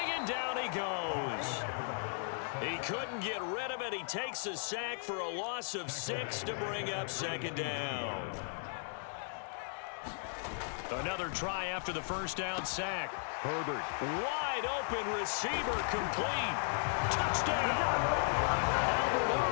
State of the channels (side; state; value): right; silent; digital silence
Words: and down he goes. He couldn't get rid of it. He takes a sack for a loss of 6 to bring up 2nd down. Another try after the first down sack. Herbert, wide open receiver, complete. Touchdown. Albert